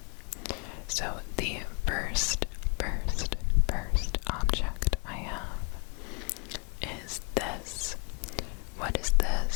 So the first object I have is this. What is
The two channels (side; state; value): right; quieter; 32.5 dB